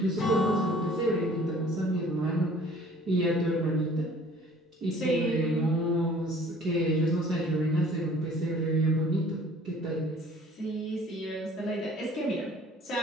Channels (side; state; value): both; normal; correlation 0.52